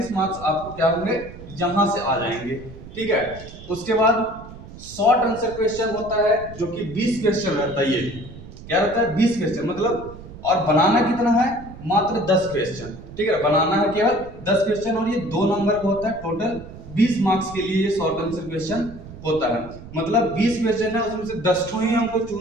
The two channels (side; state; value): right; noise; rumble, 15 dB below the sound